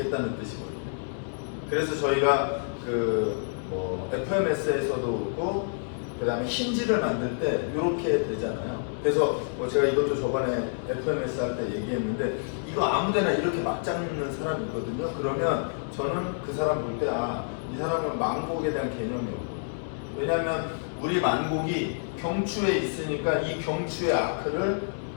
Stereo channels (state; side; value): silent; right; digital silence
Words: 뜻이거든요. 그래서 저희가 FMS에서도 그렇고 그 다음에 힌지를 만들 때 이렇게 되잖아요. 그래서 제가 이것도 저번에 FMS 할 때 얘기했는데 이거 아무데나 이렇게 막 잡는 사람이 있거든요. 그러면 저는 그 사람 볼 때 이 사람은 만곡에 대한 개념이 없고, 왜냐하면 우리 만곡이 경추에 있으니까 이 경추의 아크를